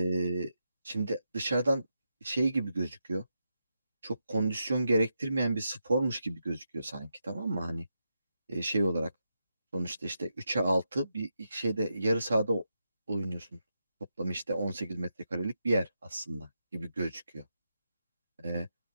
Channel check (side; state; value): both; inverted; correlation -0.85